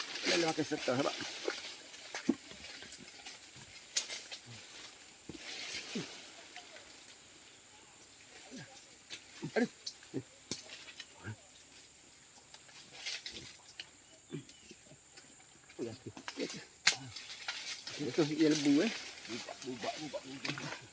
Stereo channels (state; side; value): identical; both; correlation 1.00